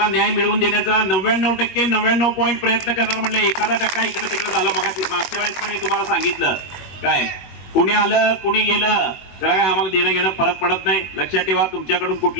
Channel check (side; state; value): right; late; 21 ms